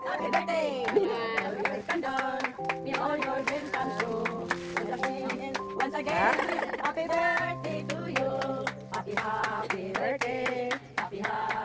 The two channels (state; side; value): identical; both; correlation 1.00